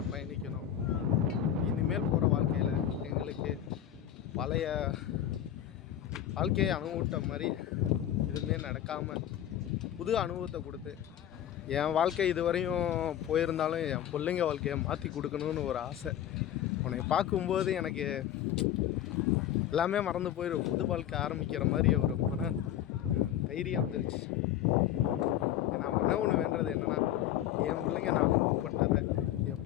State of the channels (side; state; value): right; quieter; 11.2 dB